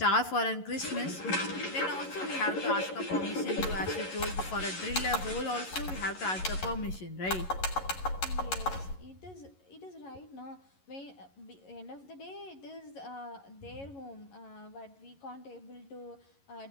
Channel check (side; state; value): right; late; 11 ms